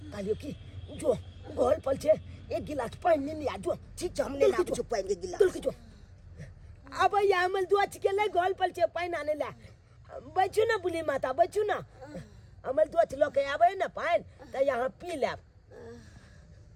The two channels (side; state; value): both; identical; correlation 1.00